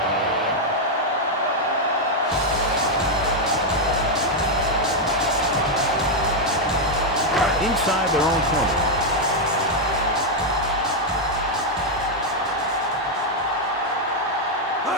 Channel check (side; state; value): both; normal; correlation 0.00